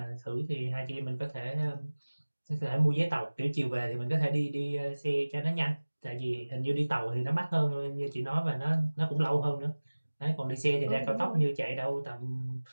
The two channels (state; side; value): inverted; both; correlation -1.00